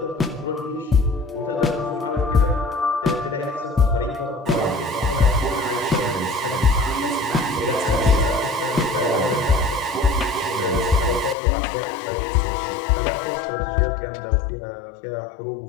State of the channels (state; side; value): drops out; right; at 11.4 s